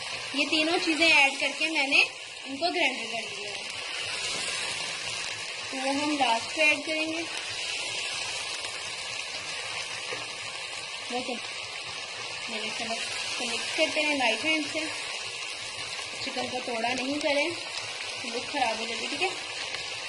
ये तीनों चीज़ें ऐड करके मैंने इनको ग्राइंड कर लिया है, तो वो हम लास्ट पे ऐड करेंगे। ओके, मैंने चलो तो मिक्स करते हैं लाइट हैंड से। चिकन को तोड़ा नहीं करें, लुक खराब हो जाती, ठीक है।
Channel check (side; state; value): both; identical; correlation 1.00